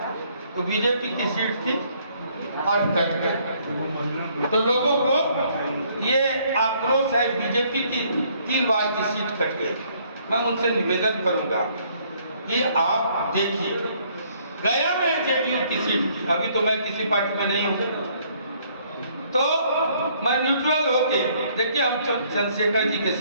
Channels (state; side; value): inverted; both; correlation -0.65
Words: तो बीजेपी की सीट थी और कट गई। तो लोगों को ये आक्रोश है, बीजेपी की 3 बार की सीट कट गई। मैं उनसे निवेदन करूंगा कि आप देखिए, गया में जेडीयू की सीट थी, अभी तो मैं किसी पार्टी में नहीं हूँ, तो मैं न्यूट्रल होके, देखिए हम चंद्रशेखर जी के